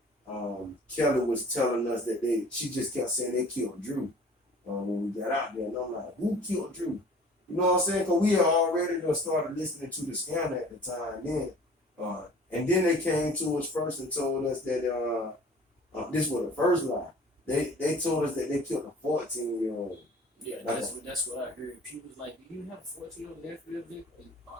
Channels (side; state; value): both; normal; correlation 0.48